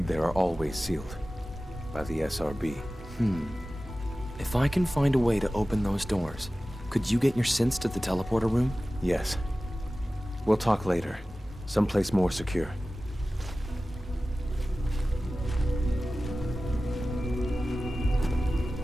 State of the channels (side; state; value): both; normal; correlation 0.96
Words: there are always sealed. By the SRB. If I can find a way to open those doors, could you get your synths to the teleporter room? Yes. We'll talk later. Someplace more secure.